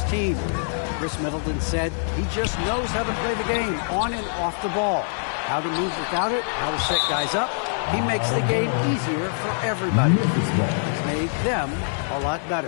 team. Chris Middleton said he just knows how to play the game on and off the ball, how to move without it, how to set guys up. He makes the game easier for everybody. He's made them a lot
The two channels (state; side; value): silent; right; 57 dB below the other